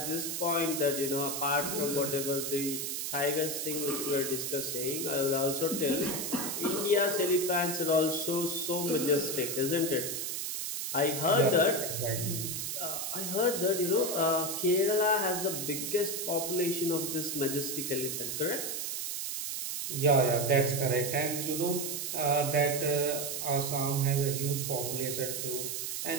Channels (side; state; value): right; noise; hiss, 3 dB below the sound